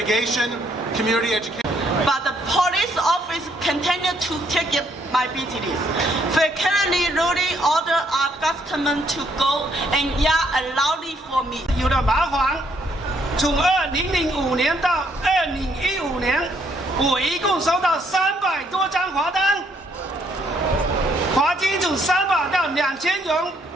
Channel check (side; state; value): both; normal; correlation 0.70